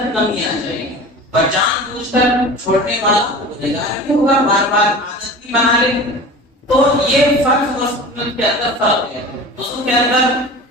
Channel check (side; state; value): both; normal; correlation 0.36